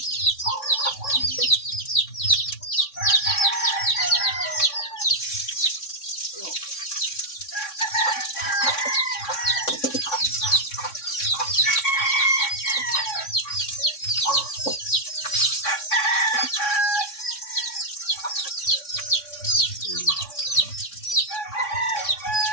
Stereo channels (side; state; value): right; late; 3.6 ms